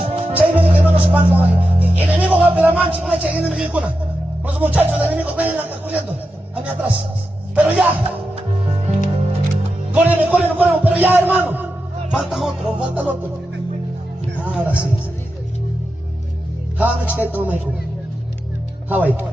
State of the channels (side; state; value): both; normal; correlation 0.89